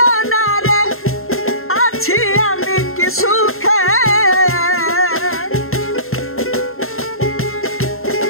না রে আছি আমি কি সুখে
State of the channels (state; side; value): late; right; 0.61 ms